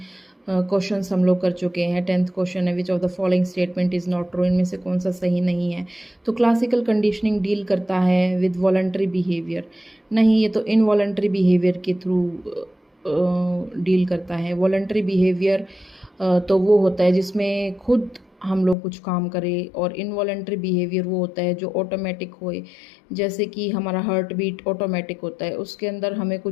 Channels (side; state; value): right; drops out; at 18.8 s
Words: क्वेश्चंस हम लोग कर चुके हैं। 10th क्वेश्चन है, which of the following statement is not true, इनमें से कौन सा सही नहीं है। तो क्लासिकल कंडीशनिंग डील करता है विद वॉलंटरी बिहेवियर, नहीं ये तो इनवॉलंटरी बिहेवियर के थ्रू डील करता है। वॉलंटरी बिहेवियर तो वो होता है जिसमें खुद हम लोग कुछ काम करें, और इनवॉलंटरी बिहेवियर वो होता है जो ऑटोमेटिक होए। जैसे कि हमारा हार्ट बीट ऑटोमेटिक होता है, उसके अंदर हमें